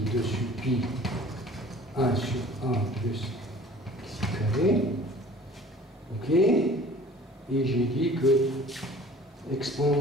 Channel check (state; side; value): normal; both; correlation 0.47